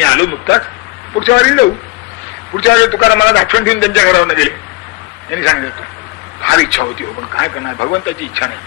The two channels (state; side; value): quieter; right; 23.3 dB